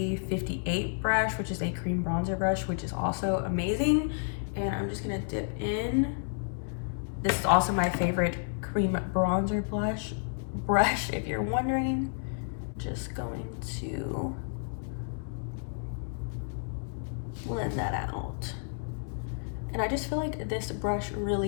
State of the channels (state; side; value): silent; right; digital silence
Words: brush, which is a cream bronzer brush, which is also amazing. And I'm just gonna dip in. This is also my favorite cream bronzer brush, if you're wondering. Just going to blend that out. And I just feel like this brush